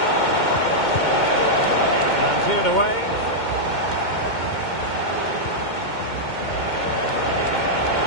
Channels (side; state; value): right; late; 2.2 ms